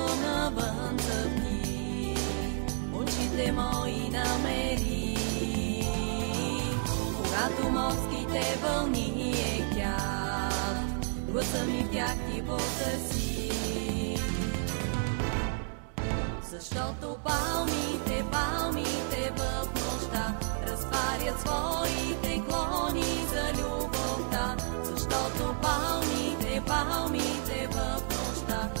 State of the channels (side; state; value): left; silent; digital silence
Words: навън цъфти, очите мои намери. Когато морските вълни ехтят, гласа ми в тях ти потърси. Защото палмите в нощта разтварят своите клони за любовта. Защото палмите в нощта